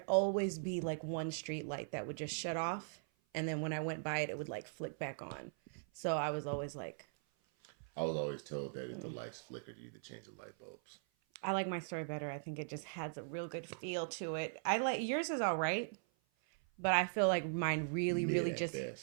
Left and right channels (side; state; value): left; silent; 51 dB below the other